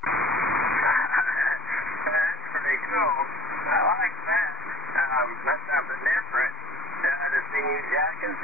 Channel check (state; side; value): normal; both; correlation 0.50